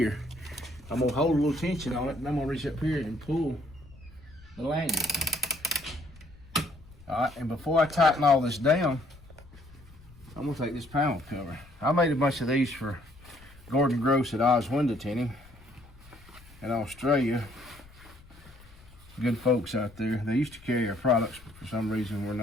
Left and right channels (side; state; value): left; noise; rumble, 23 dB below the sound